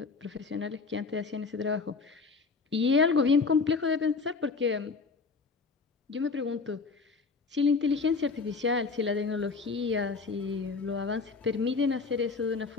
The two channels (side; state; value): right; quieter; 4.6 dB